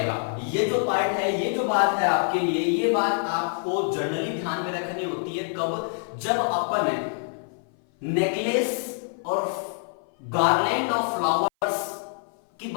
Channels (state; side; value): silent; right; 57 dB below the other